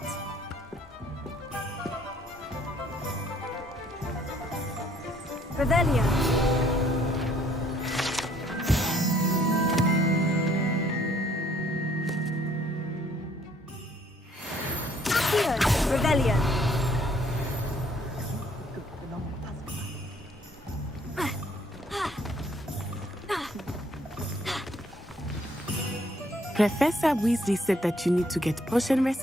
Revelio. Revelio. Professor Weasley said that you need to get potion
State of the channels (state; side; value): normal; both; correlation 0.63